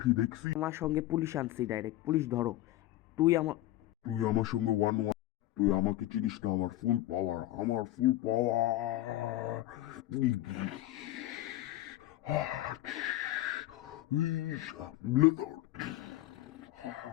দেখছি। আমার সঙ্গে পুলিশ আনছি, ডাইরেক্ট পুলিশ ধরো। তুই আমার তুই আমার সঙ্গে ওয়ান ওয়ান, তুই আমাকে চিনিস না, আমার ফুল পাওয়ার, আমার ফুল পাওয়ার।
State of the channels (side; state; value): right; quieter; 15.4 dB